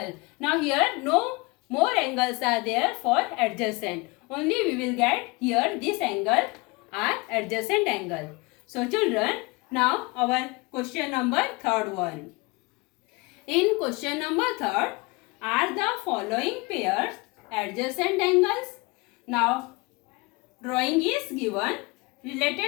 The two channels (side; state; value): right; quieter; 25.6 dB